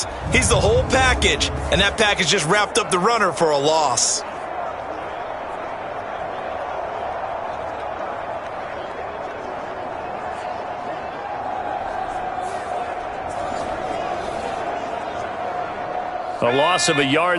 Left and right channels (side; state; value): both; identical; correlation 1.00